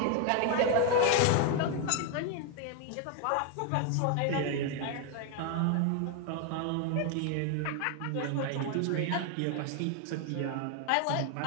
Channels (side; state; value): both; different; correlation 0.01